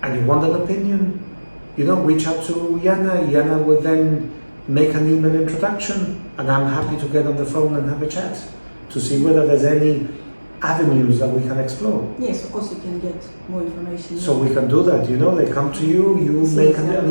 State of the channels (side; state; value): both; inverted; correlation -1.00